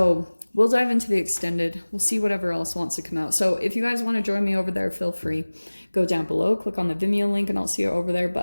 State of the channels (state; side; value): inverted; both; correlation -1.00